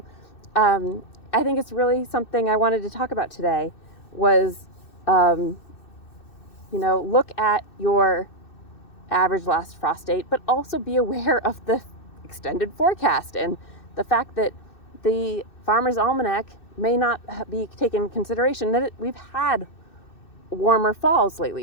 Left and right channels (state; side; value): late; right; 2.6 ms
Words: I think it's really something I wanted to talk about today was, look at your average last frost date, but also be aware of the extended forecast and the fact that the Farmer's Almanac may not be taken into consideration that we've had warmer falls